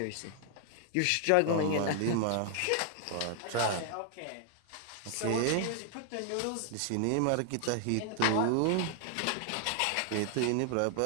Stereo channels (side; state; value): both; different; correlation 0.00